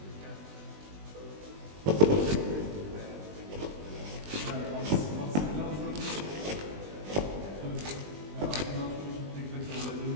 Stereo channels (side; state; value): left; late; 20 ms